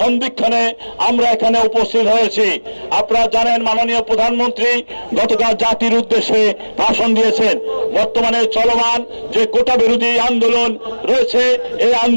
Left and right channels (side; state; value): both; inverted; correlation -1.00